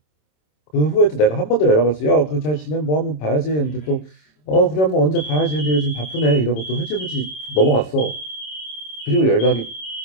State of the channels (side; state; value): right; late; 26 ms